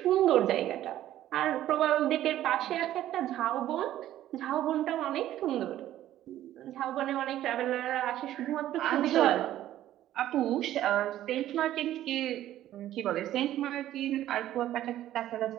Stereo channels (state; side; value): quieter; left; 13.0 dB